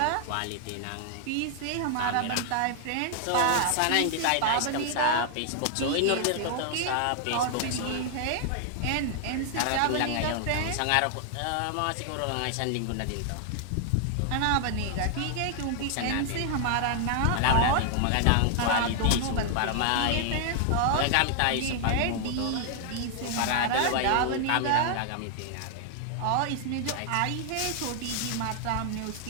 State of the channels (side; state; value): both; different; correlation 0.00